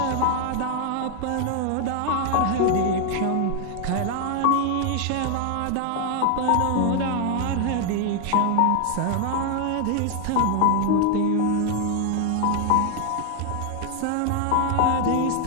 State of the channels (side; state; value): both; different; correlation 0.00